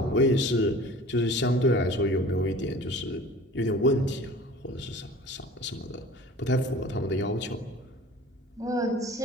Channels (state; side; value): normal; both; correlation 0.43